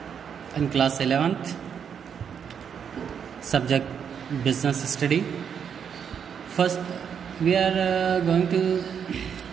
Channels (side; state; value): left; quieter; 7.5 dB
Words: in class 11th. Subject business study. First, we are going to